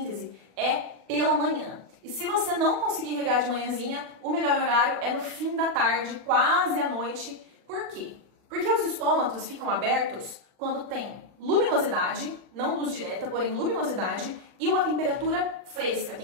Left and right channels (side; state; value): left; late; 40 ms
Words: é pela manhã. E se você não conseguir regar de manhãzinha, o melhor horário é no fim da tarde, quase à noite. Por quê? Porque os estômatos ficam abertos quando tem luminosidade, não luz direta, porém luminosidade, e uma temperatura fresca.